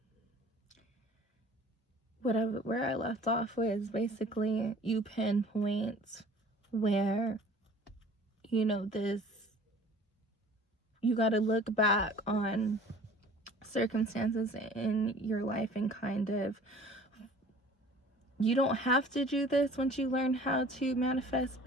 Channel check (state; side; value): normal; both; correlation 0.48